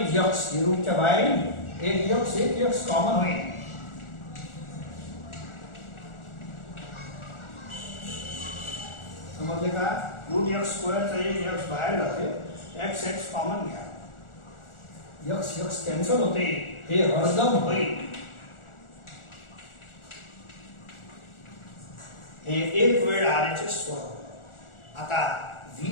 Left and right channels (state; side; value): late; right; 1.4 ms